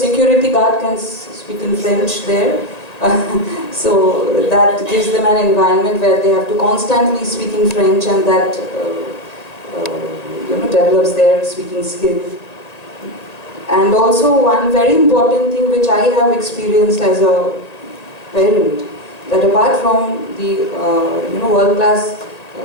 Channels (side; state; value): right; late; 1.8 ms